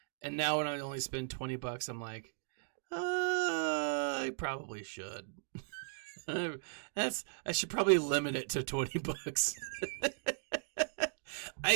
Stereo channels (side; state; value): left; silent; digital silence